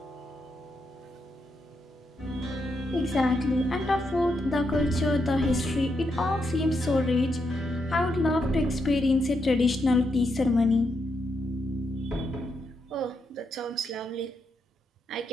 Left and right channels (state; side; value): normal; both; correlation 0.81